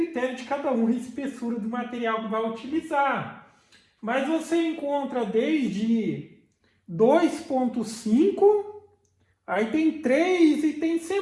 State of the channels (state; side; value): identical; both; correlation 1.00